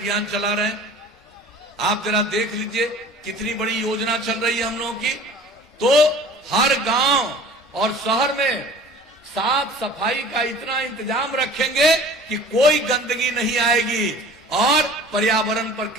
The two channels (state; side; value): normal; both; correlation 0.45